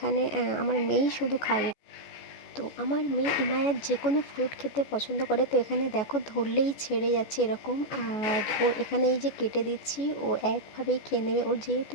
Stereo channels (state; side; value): late; right; 14 ms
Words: আমার মেয়েই শুধু খায়। তো আমার মেয়ে ইনায়াত যে কোনো ফ্রুট খেতে পছন্দ করে। তো এখানে দেখো ধরলেই ছেড়ে যাচ্ছে এরকম, আর ও এখানে এই যে কেটে দিচ্ছি ও একভাবেই খেয়ে নেবে। ওর